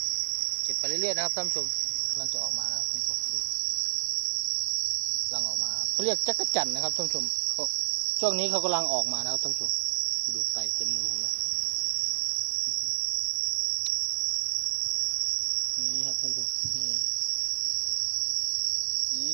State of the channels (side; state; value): left; silent; digital silence